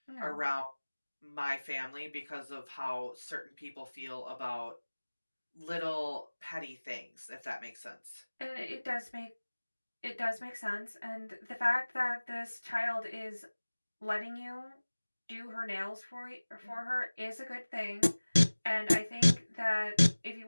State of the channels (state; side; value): inverted; both; correlation -1.00